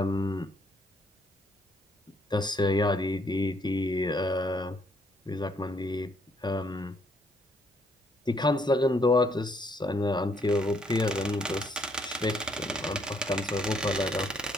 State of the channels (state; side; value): normal; both; correlation 0.69